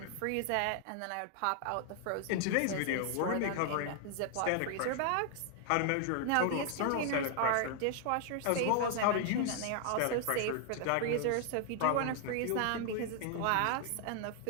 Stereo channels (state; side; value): different; both; correlation 0.00